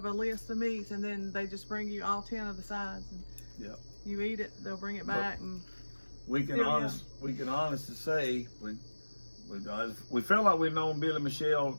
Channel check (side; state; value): both; inverted; correlation -1.00